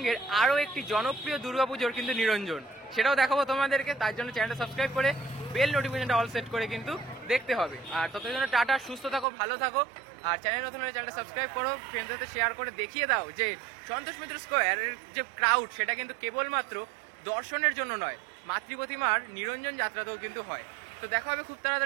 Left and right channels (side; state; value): left; drops out; at 9.2 s